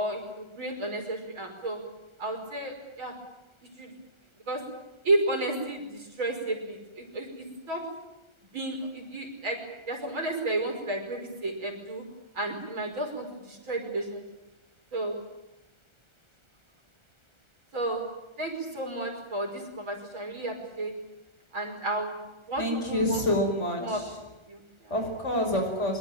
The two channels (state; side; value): late; left; 1.3 ms